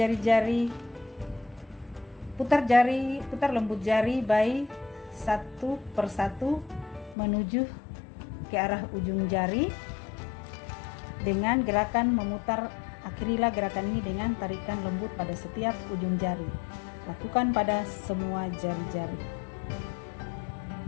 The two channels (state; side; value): drops out; right; at 7.2 s